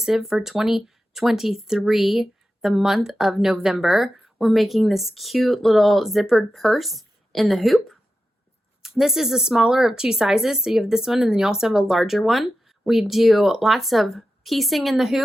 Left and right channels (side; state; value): both; normal; correlation 0.91